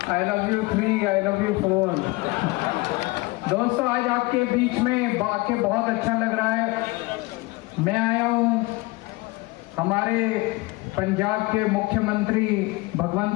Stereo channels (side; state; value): right; quieter; 23.0 dB